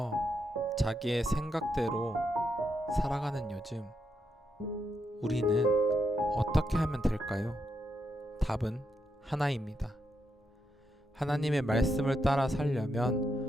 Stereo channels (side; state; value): both; normal; correlation 0.82